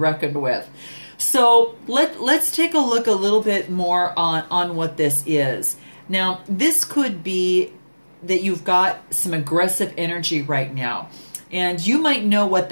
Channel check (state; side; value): inverted; both; correlation -1.00